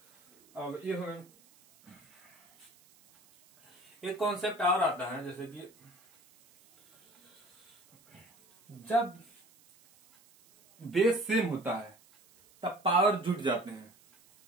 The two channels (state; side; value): noise; right; hiss, 29 dB below the sound